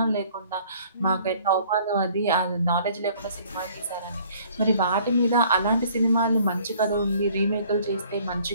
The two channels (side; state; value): both; inverted; correlation -0.56